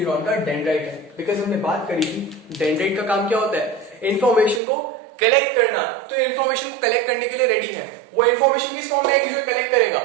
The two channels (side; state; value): left; drops out; at 4.6 s